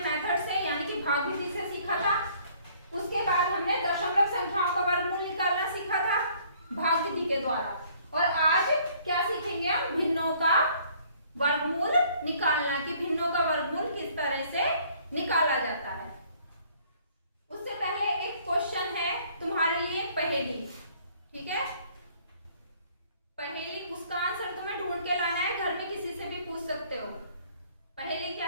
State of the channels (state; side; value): inverted; both; correlation -0.60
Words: मेथड से यानी कि भाग विधि से सीखा था। उसके बाद हमने दशमलव संख्याओं का वर्गमूल निकालना सीखा था भाग विधि के द्वारा। और आज क्या सीखेंगे हम? भिन्नों का वर्गमूल निकालना, कि भिन्नों का वर्गमूल किस तरह से निकाला जाता है। उससे पहले एक क्वेश्चन है तुम्हारे लिए, पहेली। ठीक है, पहेली, उसका आंसर तुम्हें ढूंढ के लाना है, घर में किसी से भी पूछ सकते हो। पहेली क्या